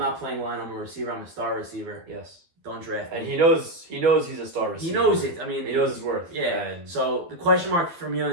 playing line. I'm a receiver. I'm a star receiver. Yes. Don't draft me. And he knows he's a star receiver. He knows it. I mean, he knows his worth. Yeah. And so the question mark for me on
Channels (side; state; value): left; late; 12 ms